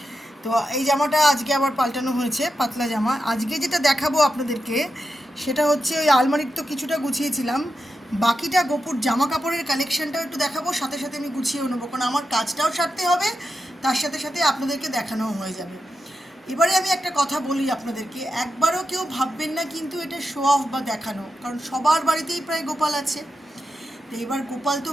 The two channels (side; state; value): both; normal; correlation 0.88